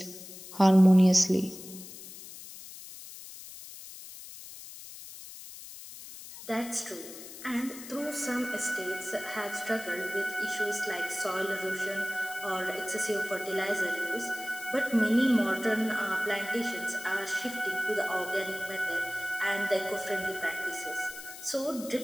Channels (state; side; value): noise; left; hiss, 14 dB below the sound